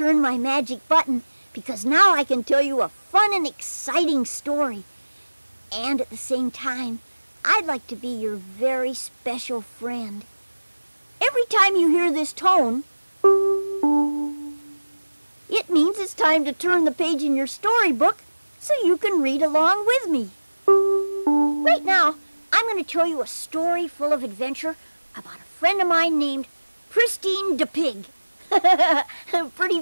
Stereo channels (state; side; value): inverted; both; correlation -1.00